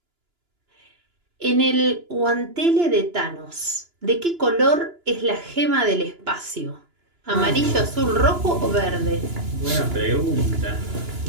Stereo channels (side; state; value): left; late; 2.9 ms